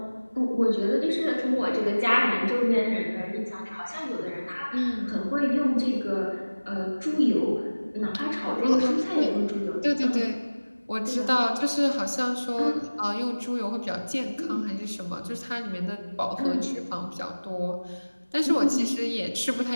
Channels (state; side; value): inverted; both; correlation -1.00